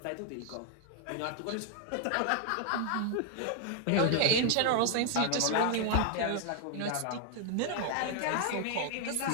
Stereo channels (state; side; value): different; both; correlation 0.00